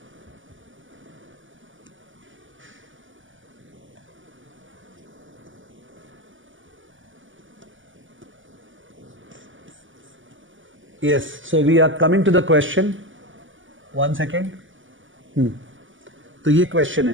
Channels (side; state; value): left; late; 0.57 ms